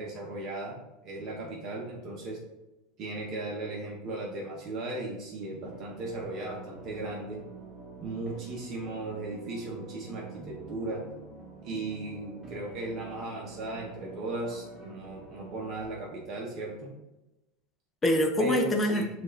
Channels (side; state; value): both; normal; correlation 0.32